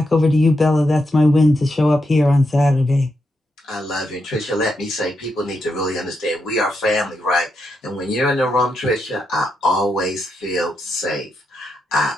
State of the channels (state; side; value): normal; both; correlation 0.83